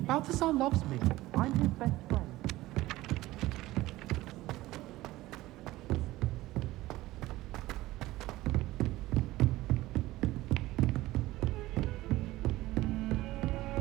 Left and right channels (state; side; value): quieter; left; 17.4 dB